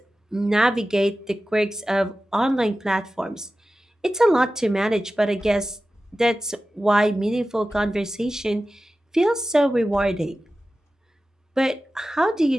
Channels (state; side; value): normal; both; correlation 0.94